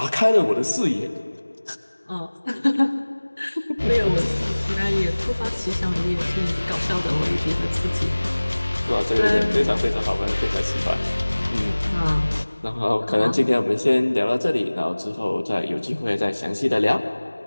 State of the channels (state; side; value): inverted; both; correlation -1.00